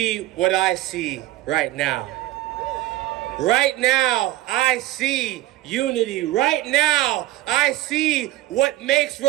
what I see right now. Right now, I see unity. Right now, I see what makes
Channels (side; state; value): left; quieter; 16.2 dB